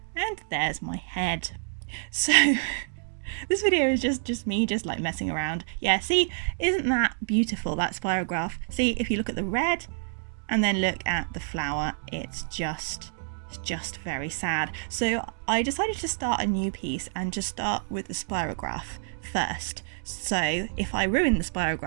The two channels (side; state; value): left; silent; digital silence